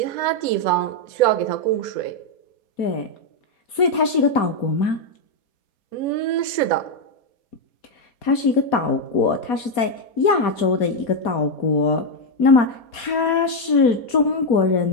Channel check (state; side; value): late; right; 4.2 ms